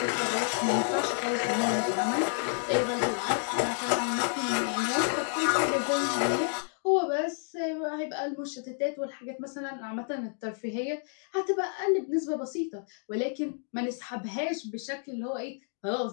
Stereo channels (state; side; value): silent; right; 58 dB below the other